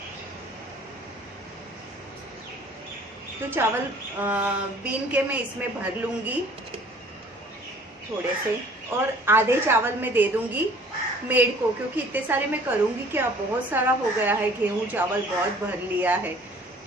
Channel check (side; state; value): both; normal; correlation 0.53